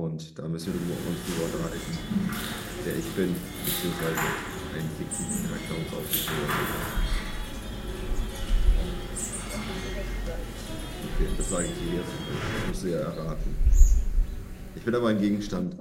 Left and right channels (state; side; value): identical; both; correlation 1.00